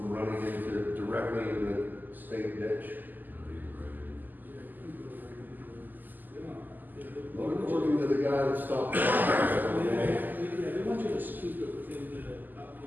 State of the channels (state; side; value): late; left; 0.087 ms